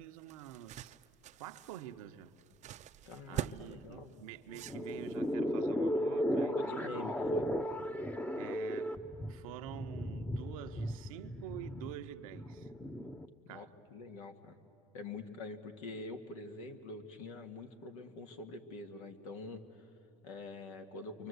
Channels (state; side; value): normal; both; correlation 0.69